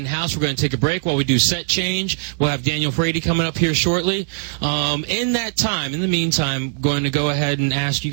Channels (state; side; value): silent; left; digital silence